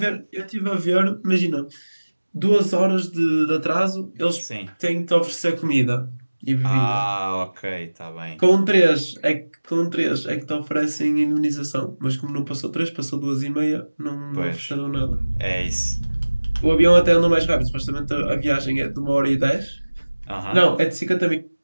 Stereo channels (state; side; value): inverted; both; correlation -1.00